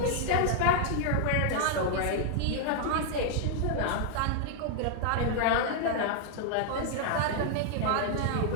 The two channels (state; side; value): different; both; correlation 0.00